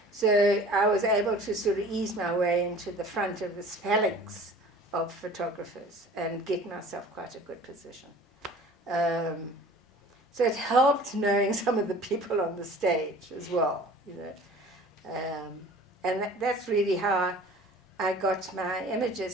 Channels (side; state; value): both; normal; correlation 0.45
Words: So I was able to sort of ease my way into the front of this phalanx of photographers and get myself quite a good position. So it helped knowing some of the people on the stage as well, you know. And that's really how I got my